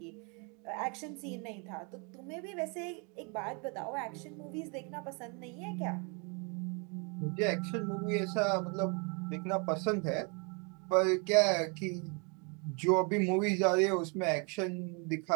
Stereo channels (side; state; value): left; quieter; 33.7 dB